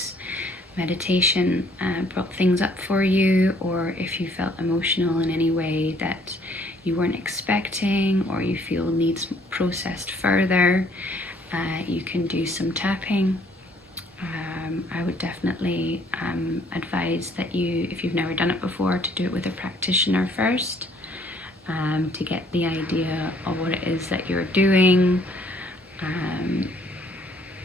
meditation brought things up for you, or if you felt emotional in any way that you weren't expecting or you feel needs processed further, you can do some tapping. I would definitely advise that you, if you've never done it before, to do it with a practitioner first, to get the idea of what it is that you're doing.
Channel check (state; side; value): normal; both; correlation 0.62